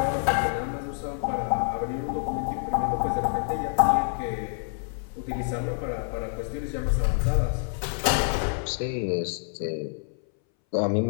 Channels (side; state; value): right; silent; 60 dB below the other